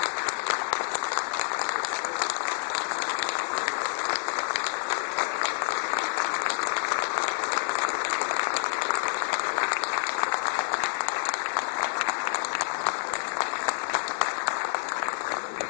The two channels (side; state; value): right; silent; digital silence